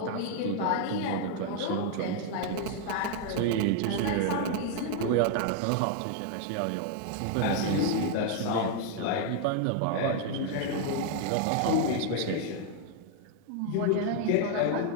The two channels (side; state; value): both; different; correlation 0.00